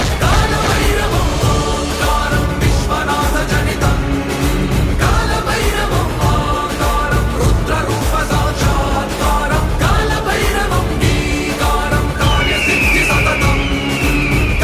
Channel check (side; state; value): both; identical; correlation 1.00